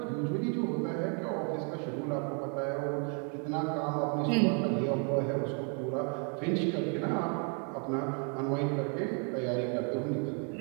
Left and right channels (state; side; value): quieter; left; 39.5 dB